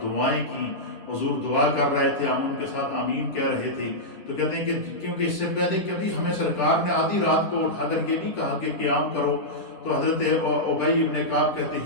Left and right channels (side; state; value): right; late; 10 ms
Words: دعائیں کی۔ حضور دعا کر رہے تھے، ہم ان کے ساتھ آمین کہہ رہے تھے۔ تو کہتے ہیں کہ کیونکہ اس سے پہلے کبھی ہمیں سرکار نے آدھی رات کو اٹھا کر یہ نہیں کہا کہ قیام کرو، تو حضرت ابی ابن کعب کہتے